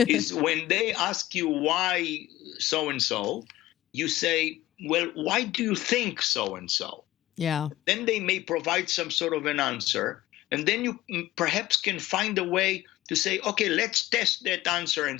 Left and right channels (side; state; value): right; quieter; 15.8 dB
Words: is when they ask you why so and so, you say, well, why do you think so and so? Yeah. Then they may provide some sort of an answer. And then you perhaps can find a way to say, okay, let's test that answer and